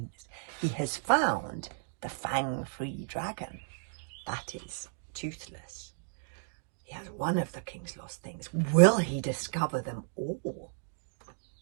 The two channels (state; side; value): silent; left; digital silence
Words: He has found the fang-free dragon. That is Toothless. He has one of the king's lost things. Will he discover them all?